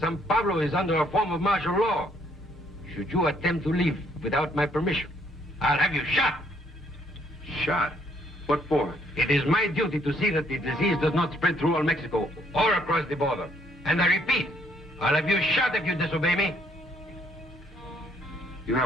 Pablo is under a form of martial law. Should you attempt to leave without my permission, I'll have you shot. Shot? What for? It is my duty to see that the disease does not spread through all Mexico or across the border. And I repeat, I'll have you shot if you disobey me. You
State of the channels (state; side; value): normal; both; correlation 0.68